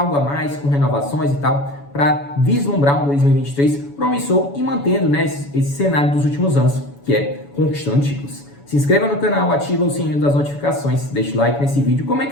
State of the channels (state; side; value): late; right; 7.1 ms